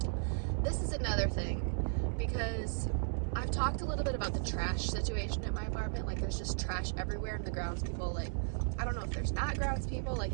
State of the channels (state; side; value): silent; left; digital silence